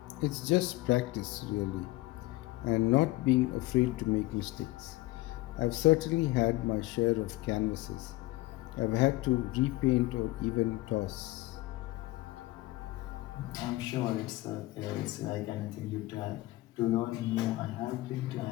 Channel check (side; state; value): right; quieter; 19.0 dB